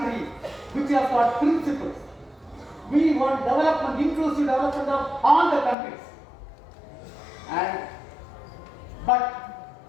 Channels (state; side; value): drops out; right; at 5.8 s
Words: which has got principles. We want development, inclusive development of all the countries. But